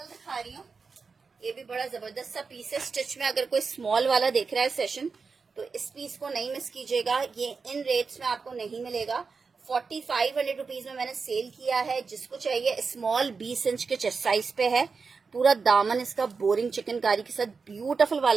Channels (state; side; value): quieter; left; 4.9 dB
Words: दिखा रही हूँ। ये भी बड़ा जबरदस्त सा पीस है स्टिच में। अगर कोई स्मॉल वाला देख रहा है सेशन तो इस पीस को नहीं मिस कीजिएगा। ये इन रेट्स में आपको नहीं मिलेगा। 4500 रुपीज में मैंने सेल किया है। जिसको चाहिए स्मॉल 20 इंच के चेस्ट साइज पे है। पूरा दामन इसका बोरिंग चिकनकारी के साथ ब्यूटीफुल